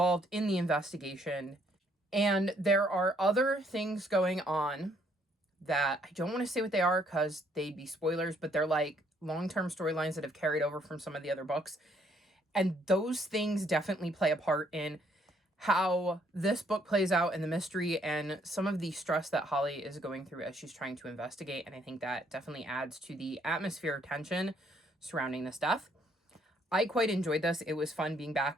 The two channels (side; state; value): both; normal; correlation 0.68